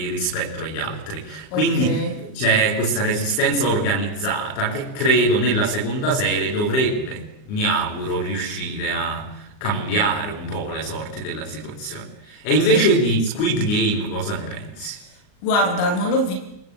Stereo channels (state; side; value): late; right; 39 ms